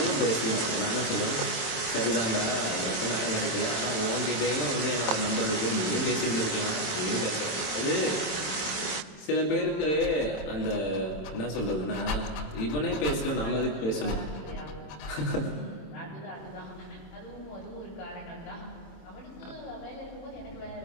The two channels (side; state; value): right; late; 26 ms